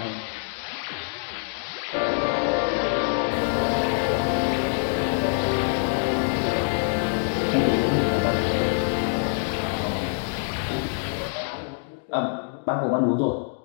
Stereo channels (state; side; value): silent; right; digital silence